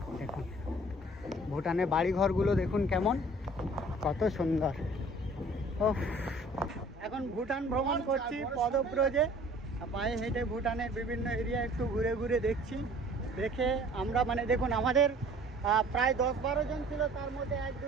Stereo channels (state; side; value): normal; both; correlation 0.51